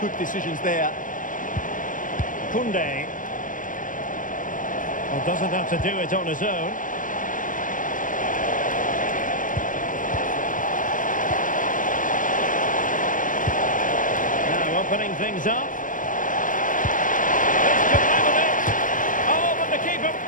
decisions there. Koundé. Well, doesn't have to do it on his own. Now opening things up. This could level it. Oh, but the keeper,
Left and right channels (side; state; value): right; late; 0.38 ms